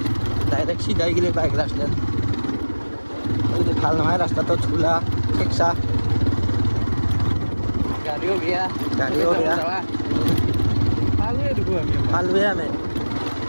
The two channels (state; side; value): inverted; both; correlation -1.00